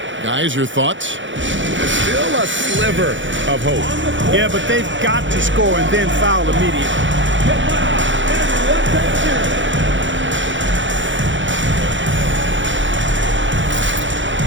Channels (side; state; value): left; late; 0.55 ms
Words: Guys, your thoughts? Still a sliver of hope. Yeah, but they've got to score and then foul immediately.